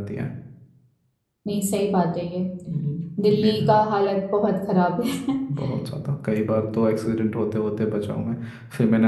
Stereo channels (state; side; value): identical; both; correlation 1.00